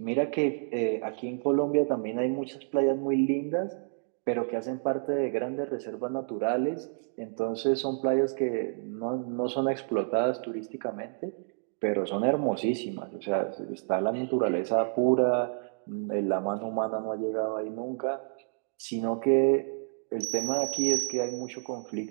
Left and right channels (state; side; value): silent; left; digital silence